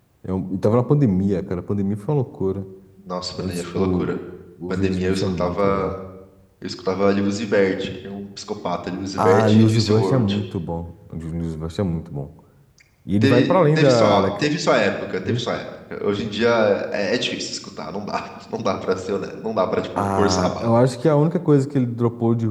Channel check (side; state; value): both; identical; correlation 1.00